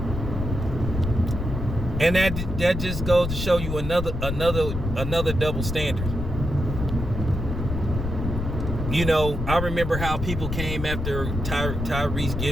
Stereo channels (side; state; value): left; noise; rumble, 4 dB below the sound